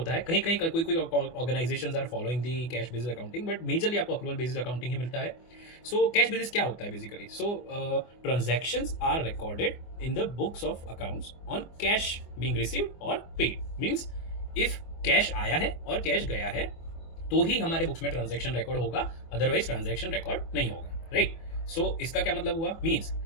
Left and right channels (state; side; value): late; right; 24 ms